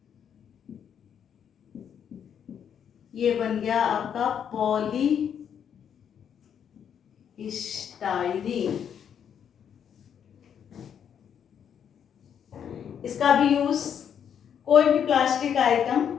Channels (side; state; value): right; quieter; 8.3 dB